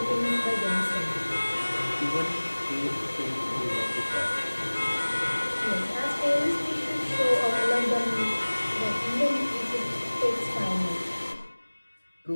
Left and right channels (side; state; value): both; inverted; correlation -1.00